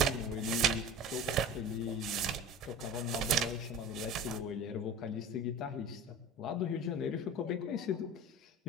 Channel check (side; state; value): both; normal; correlation 0.36